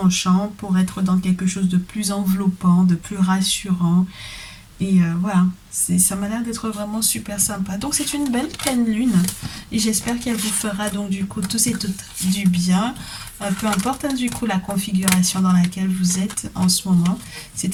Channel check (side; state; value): both; identical; correlation 1.00